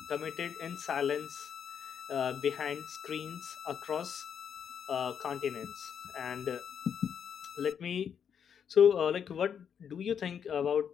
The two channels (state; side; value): quieter; right; 7.8 dB